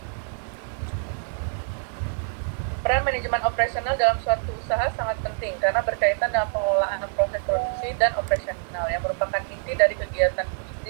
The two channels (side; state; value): left; silent; 61 dB below the other